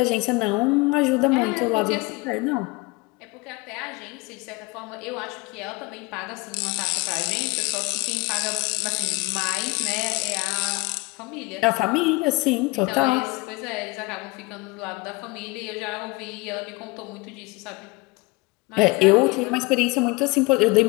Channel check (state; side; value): quieter; right; 24.4 dB